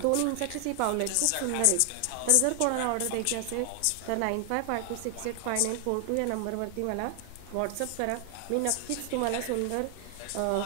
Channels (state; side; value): different; both; correlation 0.00